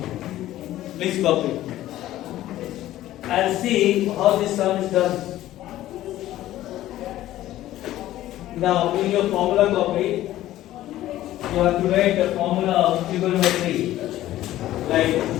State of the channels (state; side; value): quieter; right; 14.3 dB